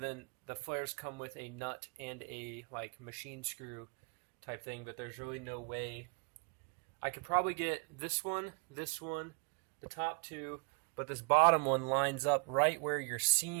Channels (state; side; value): quieter; left; 37.8 dB